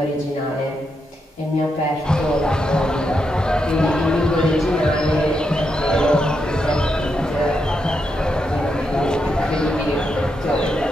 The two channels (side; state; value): both; normal; correlation 0.83